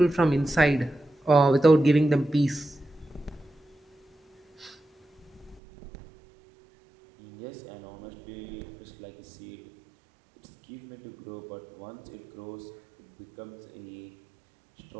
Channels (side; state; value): left; drops out; at 5.6 s